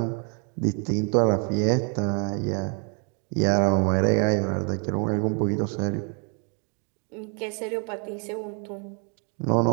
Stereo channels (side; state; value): left; quieter; 39.1 dB